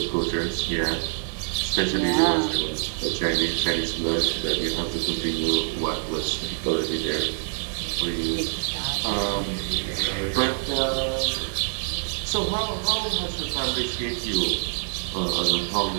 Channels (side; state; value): left; silent; 61 dB below the other